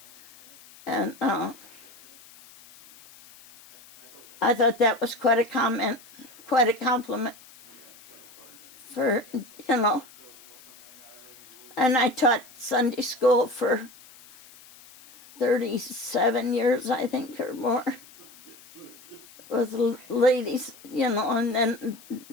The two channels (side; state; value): left; noise; hiss, 23 dB below the sound